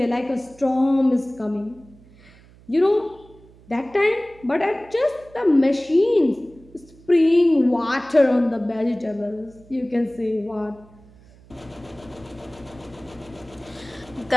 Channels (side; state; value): right; noise; hum, 25 dB below the sound